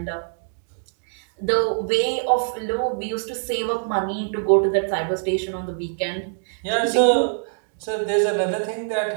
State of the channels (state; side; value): silent; left; digital silence